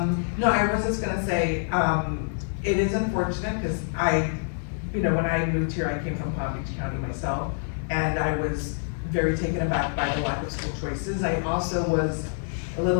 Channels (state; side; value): silent; right; digital silence